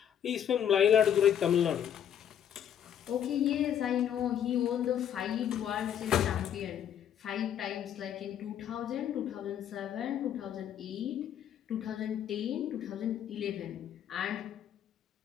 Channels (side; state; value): right; quieter; 9.6 dB